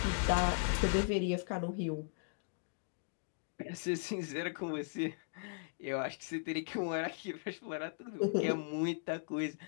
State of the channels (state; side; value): silent; right; digital silence